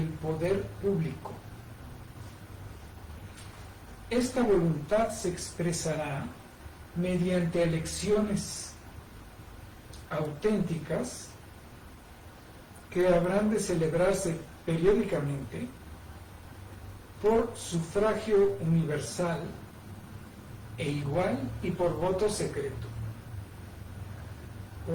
poder público. Esta voluntad se expresará mediante elecciones auténticas que habrán de celebrarse periódicamente por sufragio universal e igual y por voto secreto,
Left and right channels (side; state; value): both; identical; correlation 1.00